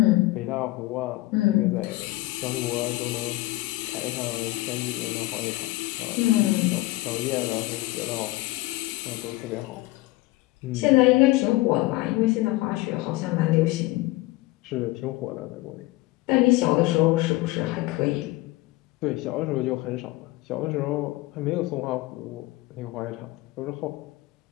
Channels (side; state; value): right; quieter; 19.5 dB